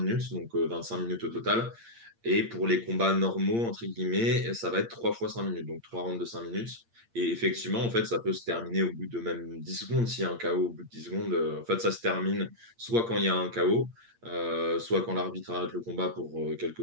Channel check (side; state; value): left; late; 8.7 ms